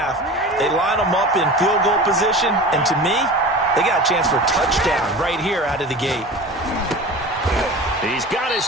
They line them up in field goal position, and to me, they got a chance for a touchdown right here out of the gate. He's got his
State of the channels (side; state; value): both; normal; correlation 0.35